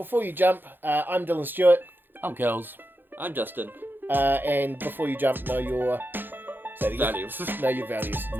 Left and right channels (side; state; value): left; late; 0.095 ms